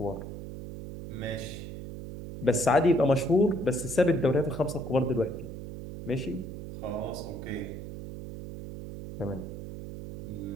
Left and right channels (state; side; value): noise; right; hum, 9 dB below the sound